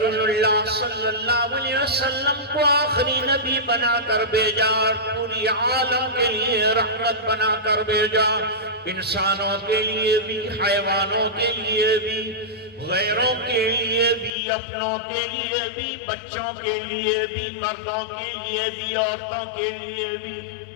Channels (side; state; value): right; drops out; at 14.3 s